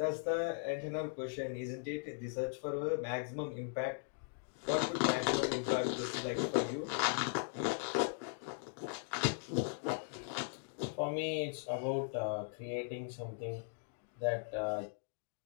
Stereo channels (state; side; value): silent; right; digital silence